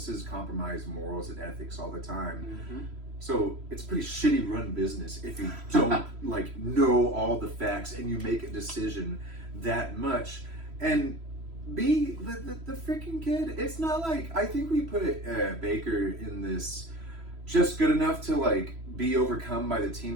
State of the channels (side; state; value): left; late; 3.0 ms